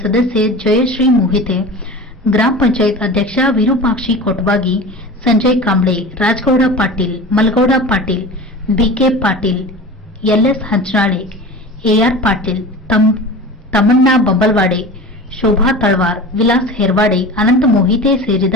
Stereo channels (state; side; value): normal; both; correlation 0.34